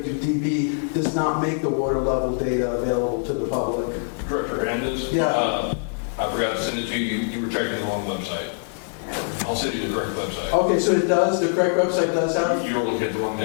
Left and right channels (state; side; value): silent; right; 61 dB below the other